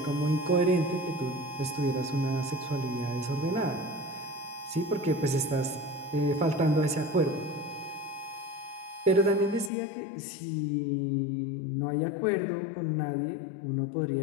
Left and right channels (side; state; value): right; drops out; at 9.7 s